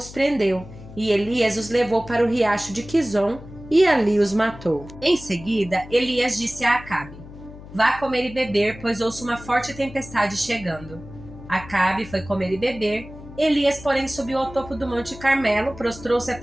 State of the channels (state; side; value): noise; left; hum, 16 dB below the sound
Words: prendeu, e Elias os levou para o riacho de Quizon, e ali os matou. Em seguida, Elias disse a Acabe: Vá comer e beber, pois ouço uma forte tempestade chegando. Acabe foi comer e beber. Elias, porém, subiu ao topo do Monte Carmelo, prostrou-se